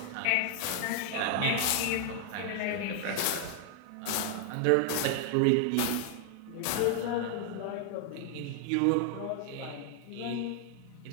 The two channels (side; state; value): both; different; correlation 0.00